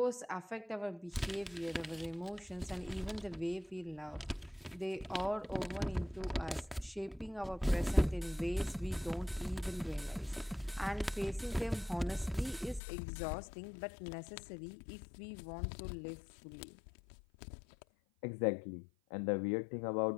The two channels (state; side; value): drops out; right; at 12.8 s